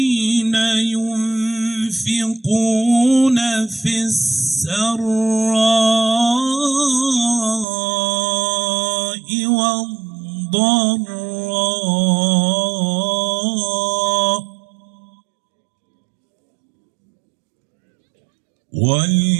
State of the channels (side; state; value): left; drops out; at 7.7 s